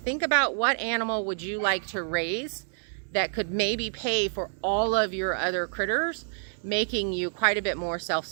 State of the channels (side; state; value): left; silent; 59 dB below the other